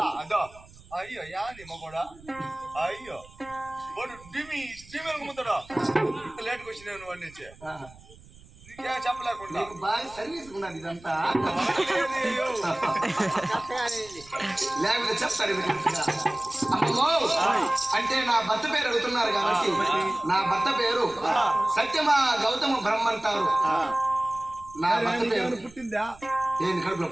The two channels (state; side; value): noise; right; rumble, 22 dB below the sound